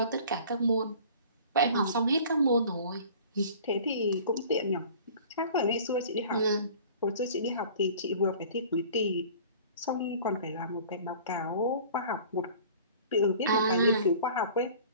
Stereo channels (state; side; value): inverted; both; correlation -0.46